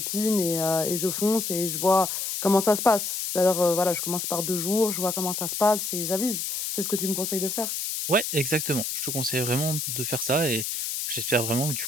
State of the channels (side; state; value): left; noise; hiss, 3 dB below the sound